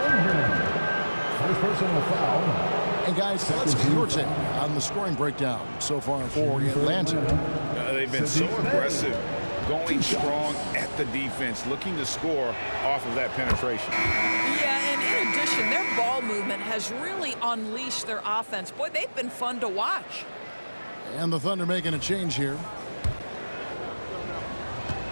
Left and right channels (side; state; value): both; inverted; correlation -1.00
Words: First personal foul. And guys, let's get your take on the scoring breakdown so far for Atlanta. They've been so aggressive, going strong at the defense, looking to score off of that penetration. Yeah, and in addition, their ball movement has really unleashed their offense. Boy, they've been fun to watch. And the Thunder making a change here.